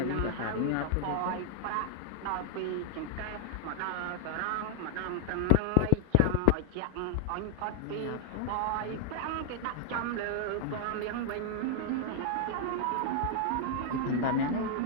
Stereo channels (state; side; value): different; both; correlation 0.00